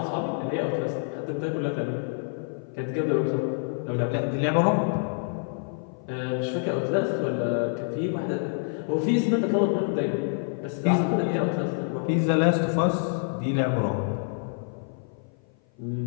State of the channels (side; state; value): right; silent; 55 dB below the other